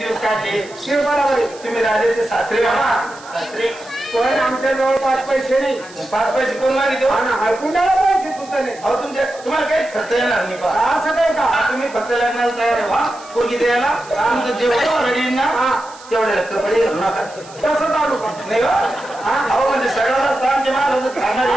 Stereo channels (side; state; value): right; noise; hiss, 21 dB below the sound